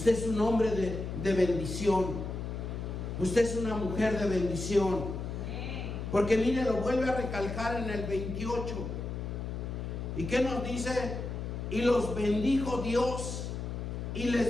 es un hombre de bendición. Usted es una mujer de bendición. Porque mire, lo vuelve a recalcar en el 28. ¿Y qué nos dice? Y los bendijo Dios y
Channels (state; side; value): noise; left; hum, 5 dB below the sound